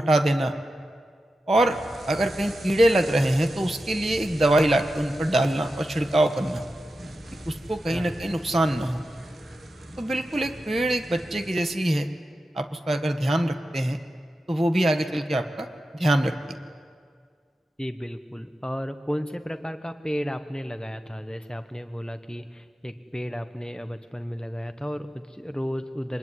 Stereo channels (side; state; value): both; normal; correlation 0.91